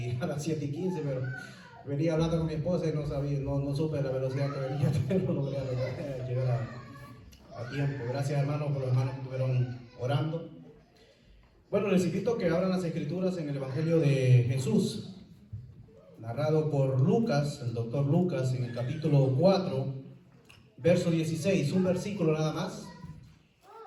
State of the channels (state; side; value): identical; both; correlation 1.00